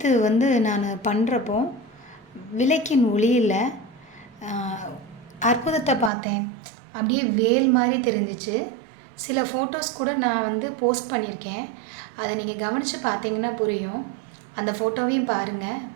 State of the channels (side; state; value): left; drops out; at 6.1 s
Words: நான் பண்ணுறப்போ விளக்கின் ஒளியில் அற்புதத்தை பார்த்தேன். அப்படியே வேல் மாதிரி தெரிஞ்சிச்சு. சில ஃபோட்டோஸ் கூட நான் போஸ்ட் பண்ணியிருக்கேன். அதை நீங்கள் கவனித்து பார்த்தீங்கன்னா புரியும். அந்த ஃபோட்டோவையும் பாருங்கள்.